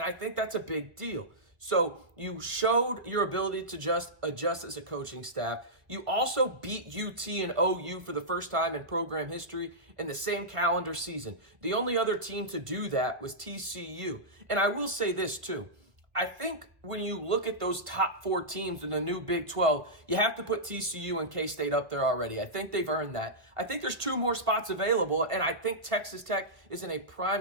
I think that's a big deal. So you showed your ability to just adjust as a coaching staff. You also beat UT and OU for the first time in program history in the same calendar season. The only other team to do that was TCU. And I will say this too. I think when you look at those top 4 teams in the new Big 12, you have to put TCU and K-State up there already. I think they've earned that. I think there's 2 more spots available, and I think Texas Tech is in a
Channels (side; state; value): left; late; 1.3 ms